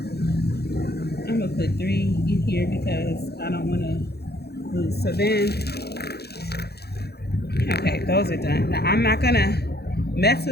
I'm gonna put 3 in here because I don't want to lose. So then, okay, those are done. Now I'm not gonna mess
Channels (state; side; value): late; right; 0.47 ms